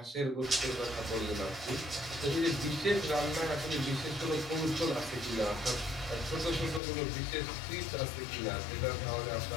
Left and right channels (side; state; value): right; drops out; at 6.8 s